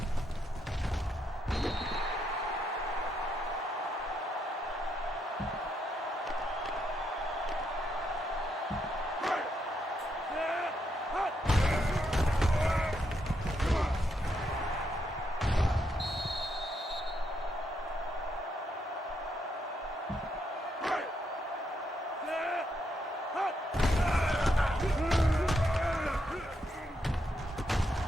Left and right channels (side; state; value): both; normal; correlation 0.78